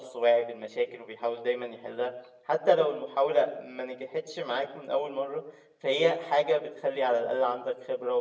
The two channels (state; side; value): identical; both; correlation 1.00